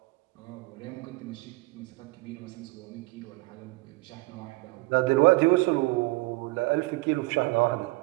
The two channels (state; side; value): quieter; left; 23.1 dB